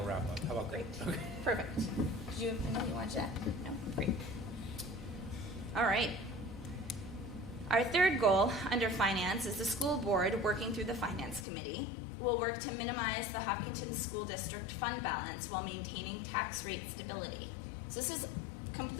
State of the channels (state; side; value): drops out; right; at 11.5 s